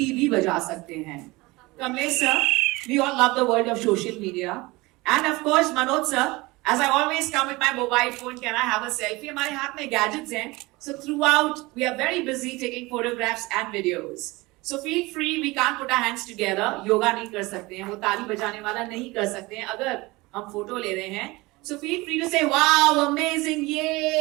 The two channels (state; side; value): quieter; left; 22.3 dB